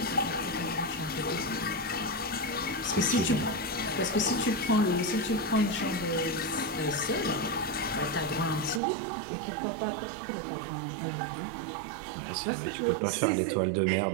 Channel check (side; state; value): left; drops out; at 8.8 s